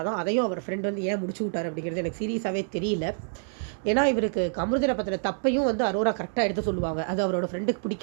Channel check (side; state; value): left; silent; digital silence